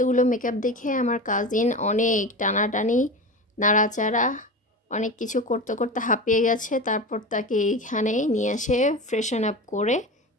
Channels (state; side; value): normal; both; correlation 0.27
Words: মেকআপ দেখে আমার কাজিন অনেক টানাটানি, নাড়াচাড়া, অনেক কিছু করতে করতে হাঁপিয়ে গেছে। তারপর তাকে এইখানে নিয়ে এসে ফ্রেশন আপ করে